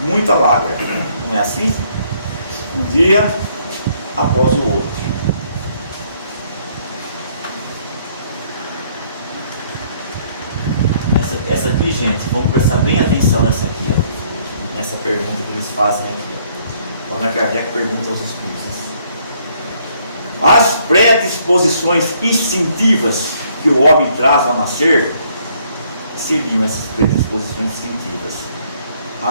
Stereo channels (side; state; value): both; inverted; correlation -0.66